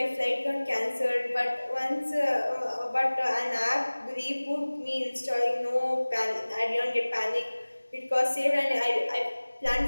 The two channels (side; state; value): both; inverted; correlation -1.00